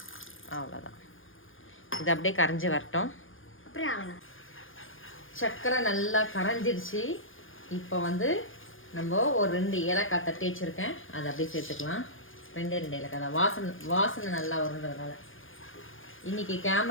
அவ்வளோதான். இது அப்படியே கரைஞ்சி வரட்டும். சர்க்கரை நல்லா கரைஞ்சிருச்சு. இப்போ நம்ம ஒரு 2 ஏலக்காய் தட்டி வச்சுருக்கேன், அதை அப்படியே சேர்த்துக்கலாம். 2 ஏலக்காய் தான், வாசனை நல்லா வருன்றதுனால. இன்னைக்கு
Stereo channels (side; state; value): right; late; 0.58 ms